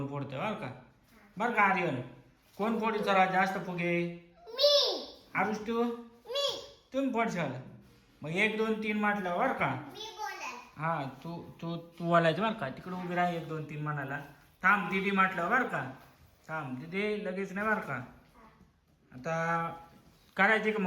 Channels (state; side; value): identical; both; correlation 1.00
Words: फोडते बरं का. बरं का आर्यन कोण फोडी सर्वात जास्त फुगे. मी. आरुष तू तुम्ही फोडशाल. मग 1 2 3 म्हटलं बरं का. हा तू तू तू बोलायचं बरं का. तिकडे उभी राहा 1 2 3 म्हणाला. थांब दीदी म्हटलं बरं का. थांब दीदी लगेच नाही बरं का. आता करायची का